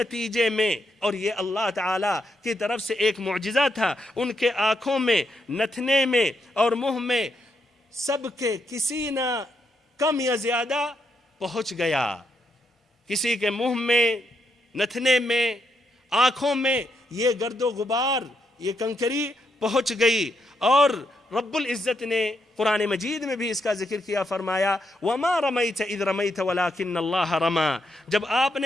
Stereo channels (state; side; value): normal; both; correlation 0.79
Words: میں، اور یہ اللہ تعالیٰ کی طرف سے ایک معجزہ تھا، ان کے آنکھوں میں، نتھنے میں اور منہ میں سب کے کسی نہ کم یا زیادہ پہنچ گیا، کسی کے منہ میں، نتھنے میں، آنکھوں میں یہ گرد و غبار، یہ کنکری پہنچ گئی۔ اور رب العزت نے قرآن مجید میں بھی اس کا ذکر کیا، فرمایا وَمَا رَمَيْتَ إِذْ رَمَيْتَ وَلَكِنَّ اللَّهَ رَمَى، جب آپ